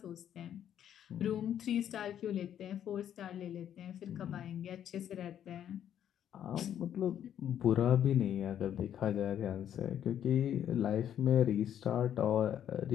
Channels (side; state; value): right; quieter; 10.0 dB